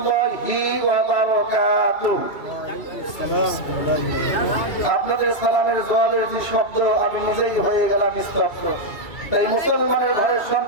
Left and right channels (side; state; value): right; late; 2.7 ms